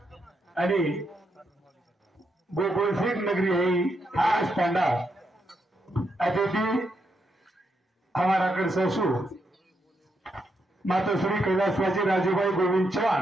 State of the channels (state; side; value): normal; both; correlation 0.80